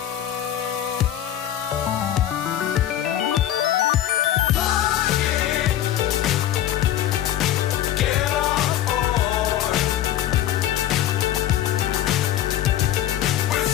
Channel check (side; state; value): right; quieter; 11.9 dB